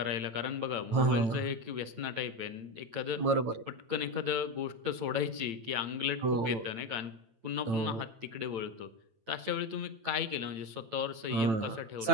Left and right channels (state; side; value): late; left; 8.9 ms